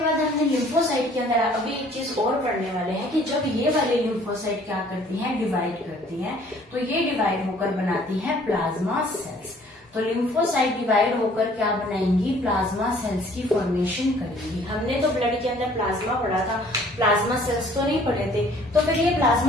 हमने लिम्फोसाइट के अंदर अभी एक चीज और पढ़ने वाले हैं कि जब ये वाले लिम्फोसाइट क्या करती हैं, डिवाइड करती हैं, तो ये डिवाइड होकर बनाती हैं प्लाज्मा सेल्स। तो लिम्फोसाइट डिवाइड होकर क्या बनाएंगी, प्लाज्मा सेल्स की फॉर्मेशन करेंगी। हमने तो ब्लड के अंदर प्लाज्मा पढ़ा था, प्लाज्मा सेल्स तो नहीं पढ़े थे। तो फिर ये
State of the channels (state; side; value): normal; both; correlation 0.56